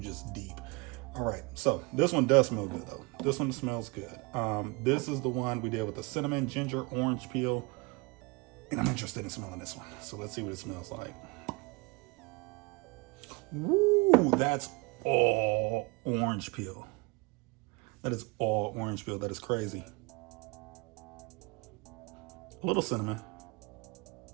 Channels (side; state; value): left; quieter; 27.5 dB